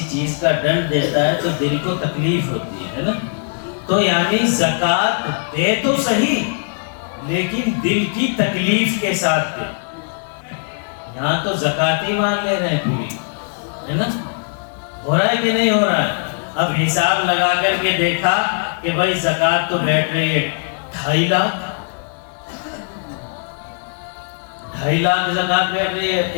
چیز کا ڈنڈ دیتا ہے تو دل کو تکلیف ہوتی ہے نا, تو یعنی زکوٰۃ دے تو صحیح لیکن دل کی تکلیف کے ساتھ دے. یہاں تو زکوٰۃ ہی مان لے رہے ہیں پوری, ہے نا, ہو رہا ہے کہ نہیں ہو رہا ہے. اب حساب لگا کر کے دیکھا کہ بھائی زکوٰۃ تو بیٹھ رہی ہے 2.5 لاکھ, 2.5 لاکھ زکوٰۃ بیٹھ رہی ہے.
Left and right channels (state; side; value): silent; right; 62 dB below the other